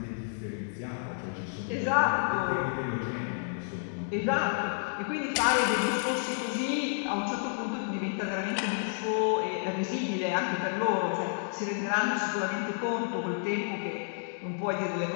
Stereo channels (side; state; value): right; silent; digital silence